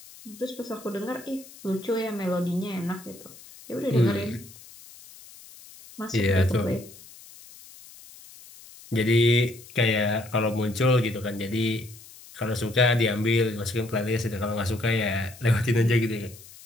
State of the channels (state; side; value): noise; left; hiss, 20 dB below the sound